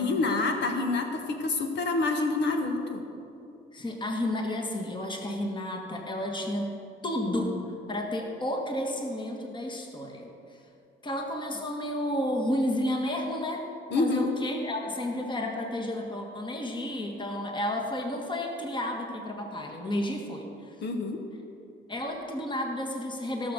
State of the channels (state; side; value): normal; both; correlation 0.52